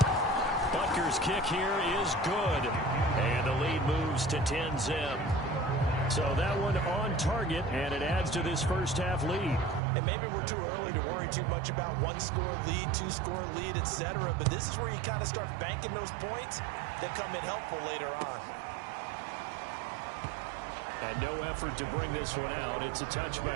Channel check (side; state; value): left; drops out; at 9.8 s